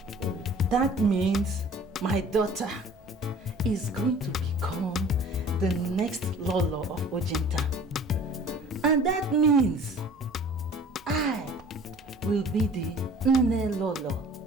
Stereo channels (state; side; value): normal; both; correlation 0.48